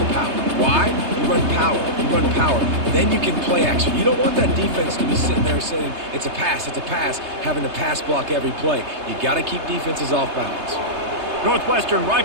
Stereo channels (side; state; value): left; late; 3.3 ms